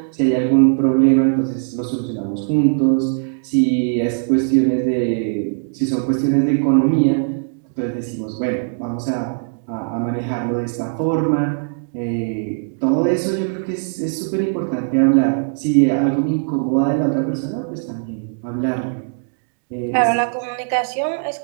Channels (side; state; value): left; silent; digital silence